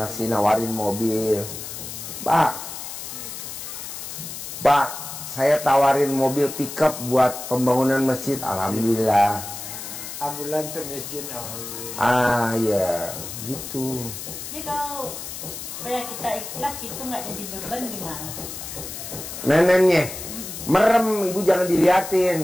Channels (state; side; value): noise; left; hiss, 9 dB below the sound